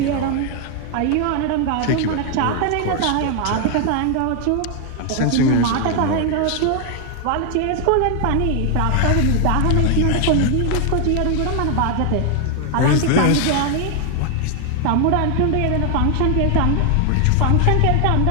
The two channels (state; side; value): different; both; correlation 0.00